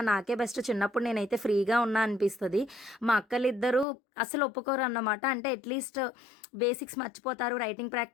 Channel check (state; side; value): drops out; right; at 3.9 s